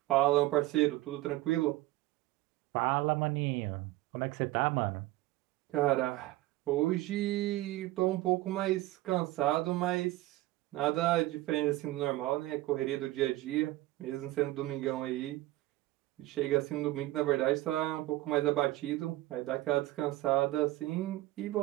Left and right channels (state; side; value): quieter; left; 17.4 dB